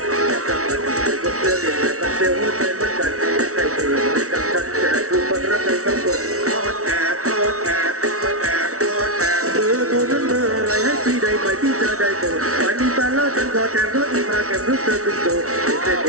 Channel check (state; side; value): late; left; 0.64 ms